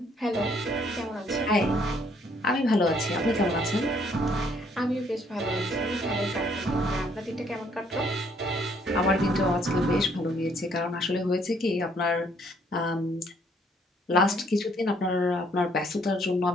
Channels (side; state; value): both; normal; correlation 0.65